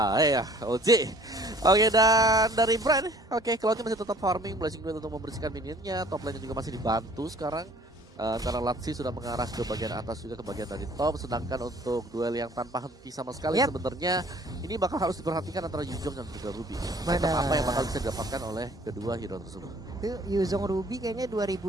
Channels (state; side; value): normal; both; correlation 0.54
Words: Ya, Oji. Oke, dan dari Brand, Cloud masih tetap farming, Blazing Duet untuk membersihkan minionnya, top lane juga masih dibantu sekarang. Karena Latsi sudah mengarah ke bagian atas juga ke bagian dari top, sedangkan untuk duel yang tanpa henti sama sekali sebenarnya ini bakal harus diperhatikan antara Yuzong dan juga Ruby. Apa yang bakal bisa didapatkan oleh kedua hero tersebut? Itu Yuzong Ruby kayaknya